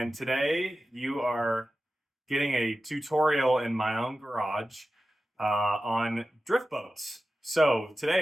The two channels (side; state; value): both; normal; correlation 0.94